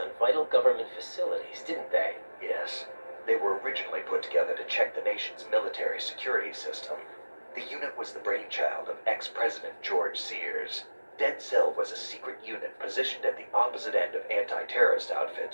vital government facilities, didn't they? Yes. They were originally put together to check the nation's military security system. The unit was the brainchild of ex-President George Sears. Dead Cell was a secret unit positioned at the opposite end of anti-terrorist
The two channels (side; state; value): both; inverted; correlation -1.00